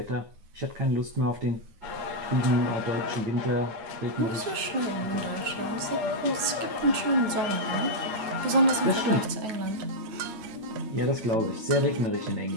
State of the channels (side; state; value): left; late; 9.3 ms